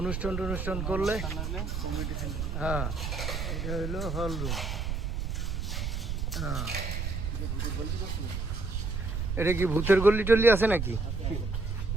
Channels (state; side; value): noise; right; rumble, 2 dB below the sound